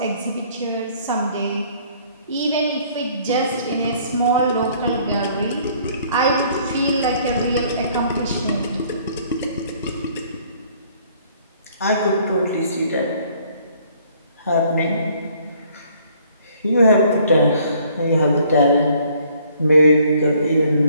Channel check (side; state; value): both; inverted; correlation -0.60